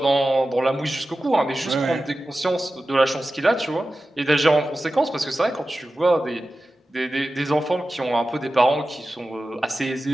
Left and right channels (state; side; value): normal; both; correlation 0.94